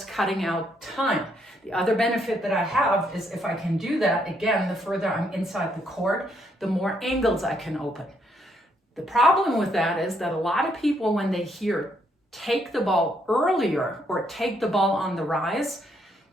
cutting out time. The other benefit that I have is if I can do that, again, the further I'm inside the court, the more angles I can open. The problem with that is that a lot of people, when they hear take the ball earlier or take the ball on the rise,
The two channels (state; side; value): normal; both; correlation 0.73